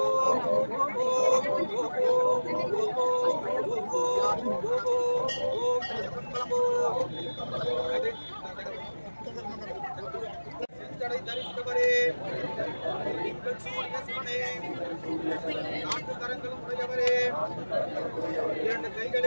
தரித்தவரே நீங்கள் சூரிய சிவனே நான்கு கரங்களும் உடையவரே இரண்டு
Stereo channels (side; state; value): both; inverted; correlation -1.00